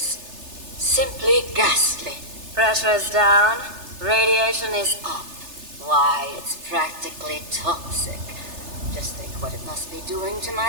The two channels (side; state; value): left; late; 3.3 ms